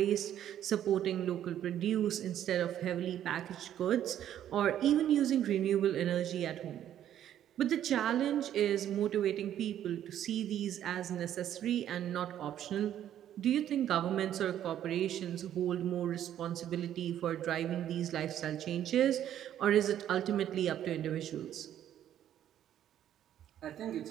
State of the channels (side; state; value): left; quieter; 11.0 dB